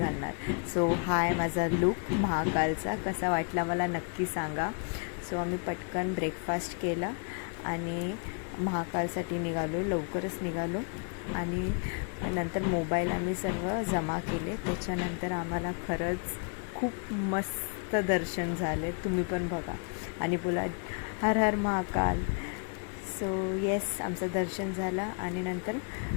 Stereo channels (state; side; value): quieter; right; 38.7 dB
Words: सो हा आहे माझा लुक महाकालचा. कसा वाटला मला नक्की सांगा. सो आम्ही पटकन ब्रेकफास्ट केला आणि महाकालसाठी निघालो. लवकरच निघालो आणि नंतर मोबाईल आम्ही सर्व जमा केले. त्याच्यानंतर आम्हाला खरंच खूप मस्त दर्शन झाले. तुम्ही पण बघा आणि बोला हर हर महाकाल. सो येस, आमचं दर्शन झालं आणि नंतर